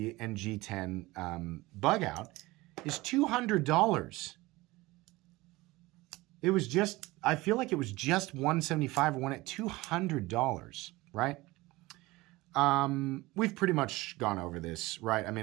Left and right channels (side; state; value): left; quieter; 20.5 dB